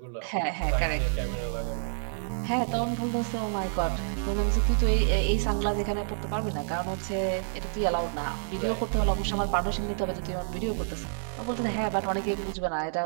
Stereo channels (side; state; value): left; silent; 59 dB below the other